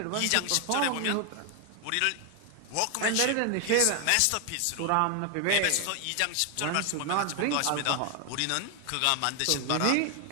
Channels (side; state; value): both; different; correlation 0.01